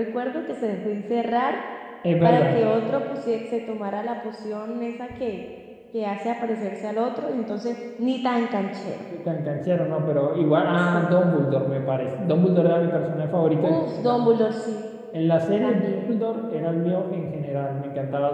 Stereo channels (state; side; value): identical; both; correlation 1.00